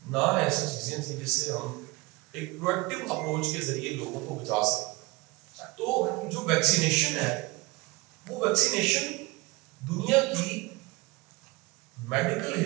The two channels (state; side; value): quieter; left; 23.0 dB